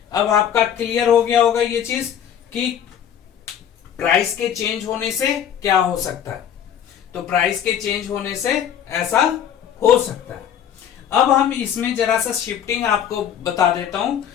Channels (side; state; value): right; quieter; 9.3 dB